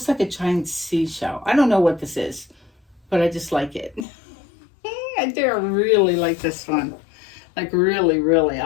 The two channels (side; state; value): right; drops out; at 4.0 s